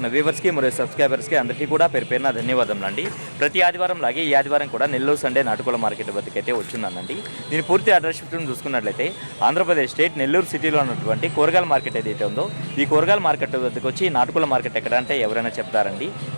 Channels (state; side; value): inverted; both; correlation -1.00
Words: వ్యూవర్స్కి మరియు సబ్స్క్రైబర్స్కి అందరికీ కూడా పేరున ధన్యవాదాలు అండి. ప్రతి ఆదివారం లాగే ఈ ఆదివారం కూడా నెల్లూరు సండే నాటుకోళ్ల మార్కెట్ వద్దకైతే వచ్చిందండి. దీని పూర్తి అడ్రస్ చూసుకున్నట్లయితే ఆంధ్రప్రదేశ్ స్టేట్ నెల్లూరు సిటీలో ఉన్నటువంటి కూరగాయల మార్కెట్ ఏదైతే ఉందో ఈ కూరగాయల మార్కెట్ వద్దకు వచ్చి నాటుకోళ్ల మార్కెట్ ఎక్కడ అంటే ఎవరైనా చెప్తారండి.